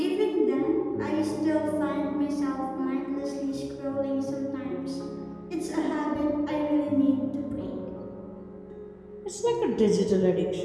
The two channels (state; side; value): identical; both; correlation 1.00